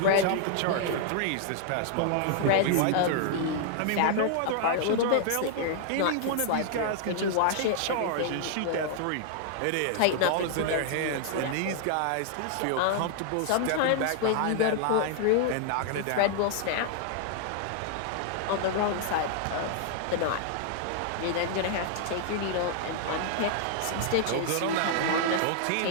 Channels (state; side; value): different; both; correlation -0.01